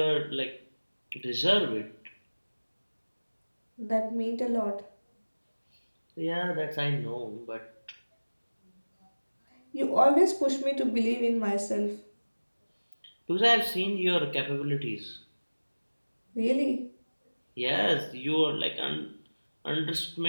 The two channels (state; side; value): inverted; both; correlation -1.00